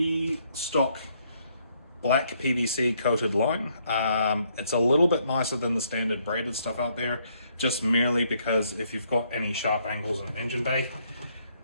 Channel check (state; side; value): inverted; both; correlation -0.71